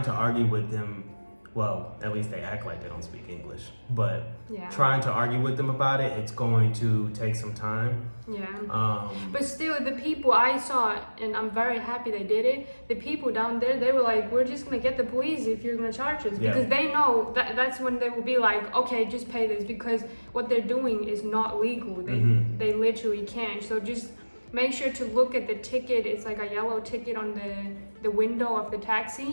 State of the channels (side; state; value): both; inverted; correlation -1.00